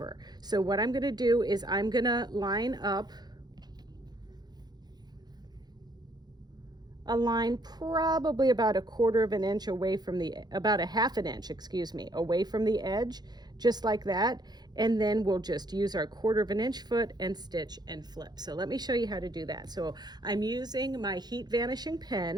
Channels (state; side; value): late; left; 0.20 ms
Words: So what I'm going to do is I'm going to line up a line probably about a quarter of an inch away from the, about a half an inch, excuse me, away from the edge, just like that. And then we'll just use our quarter of an inch foot and stitch and flip. So let me show you how to do that. So I'm using my heat vanishing